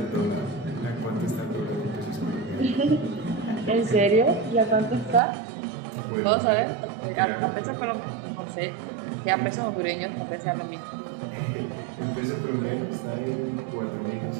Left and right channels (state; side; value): drops out; left; at 5.2 s